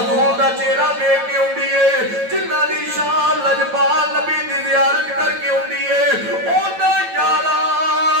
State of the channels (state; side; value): late; left; 9.1 ms